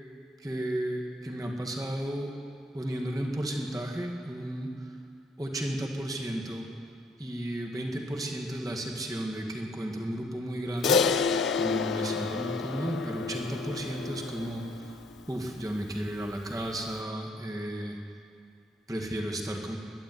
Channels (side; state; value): both; normal; correlation 0.66